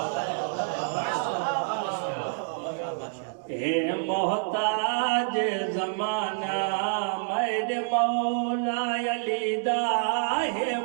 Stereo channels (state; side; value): silent; left; digital silence